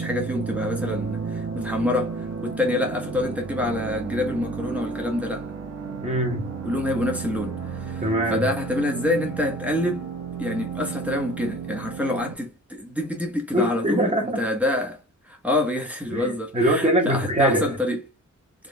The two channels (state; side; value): normal; both; correlation 0.45